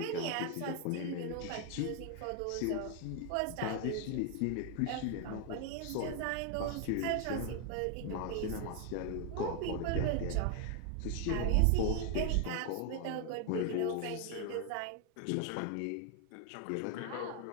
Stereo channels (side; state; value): both; different; correlation 0.00